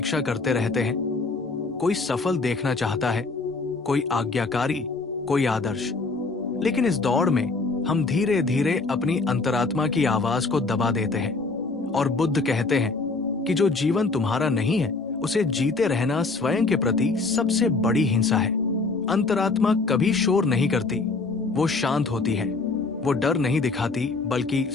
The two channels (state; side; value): quieter; right; 3.8 dB